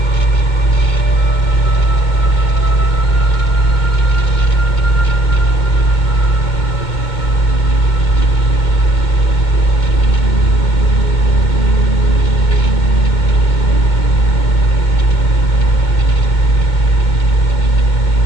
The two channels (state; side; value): late; right; 2.2 ms